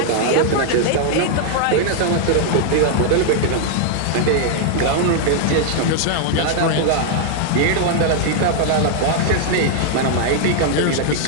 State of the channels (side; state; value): both; different; correlation 0.00